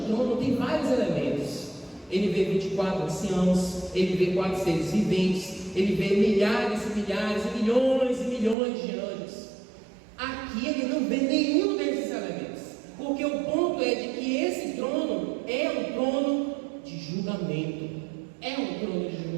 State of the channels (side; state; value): left; drops out; at 8.6 s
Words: trono tem vários elementos. Ele vê 24 anciãos, ele vê 4 seres viventes, ele vê milhares e milhares e milhões de anjos. Aqui ele não vê nenhum desses elementos, porque o ponto é de que esse trono é um trono de julgamento. É um trono de